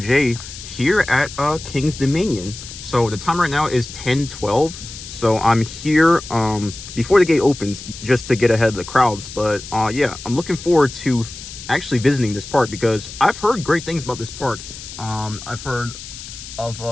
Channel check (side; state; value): left; noise; hiss, 13 dB below the sound